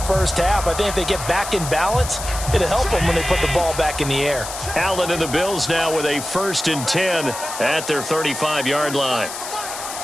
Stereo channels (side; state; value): left; noise; hiss, 8 dB below the sound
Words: first half. I think if they get back in balance, it'll help them when they put the ball back in the air. Allen and the Bills now with a 1st and 10 at their 35-yard line.